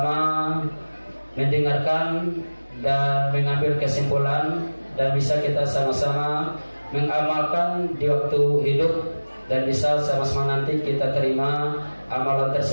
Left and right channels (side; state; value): both; inverted; correlation -1.00